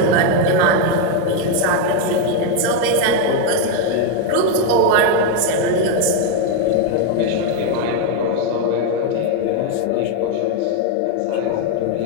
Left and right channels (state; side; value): different; both; correlation 0.01